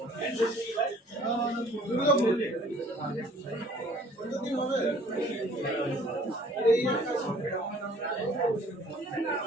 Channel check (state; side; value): normal; both; correlation 0.55